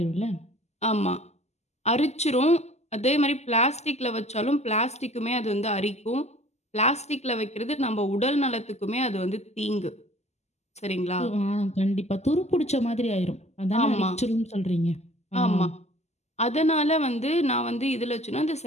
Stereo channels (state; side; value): late; right; 0.32 ms